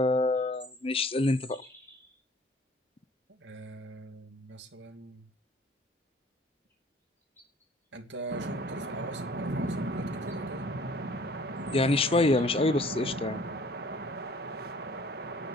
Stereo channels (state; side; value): normal; both; correlation 0.53